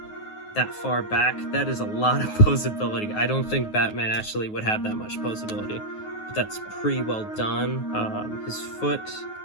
that far back. That is a lot of posability. I don't think Batman actually would have that much posability, but that's pretty well done. His foot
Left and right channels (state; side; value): late; right; 9.4 ms